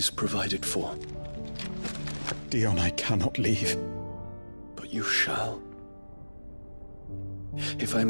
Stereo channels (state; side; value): inverted; both; correlation -1.00